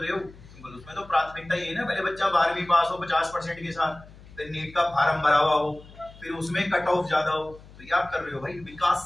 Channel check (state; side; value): noise; left; hum, 21 dB below the sound